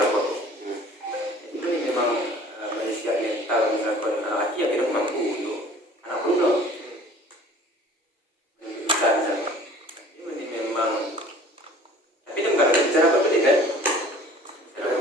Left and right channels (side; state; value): both; normal; correlation 0.49